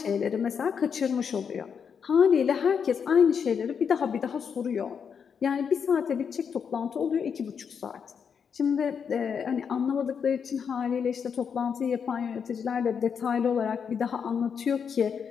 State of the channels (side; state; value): right; quieter; 6.8 dB